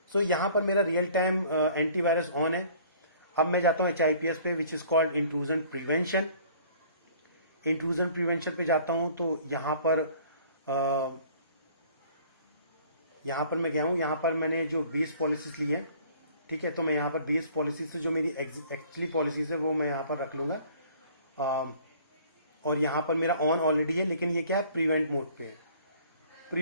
सो यहाँ पर मेरा रियल टाइम एंटीवायरस ऑन है। अब मैं जाता हूँ HIPS पे, which is called intrusion prevention. Intrusion prevention पे जाता हूं तो यहां पर मैं गया हूं। यहां पर मैंने जो बेस पॉलिसीज ली है, ठीक है, तो मैं यहां पर बेस पॉलिसीज से जो मेरी एक्चुअली पॉलिसीज है वो मैं यहां पर रख लूंगा। और यहां पर मेरा ऑन ऑलरेडी है, लेकिन ये क्या है, प्रिवेंट मोड पे है।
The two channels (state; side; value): inverted; both; correlation -0.53